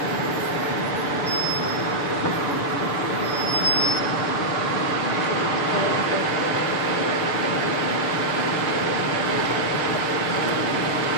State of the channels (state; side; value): late; right; 6.8 ms